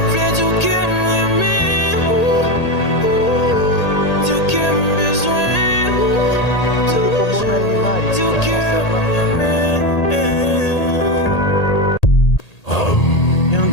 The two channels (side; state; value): right; late; 1.8 ms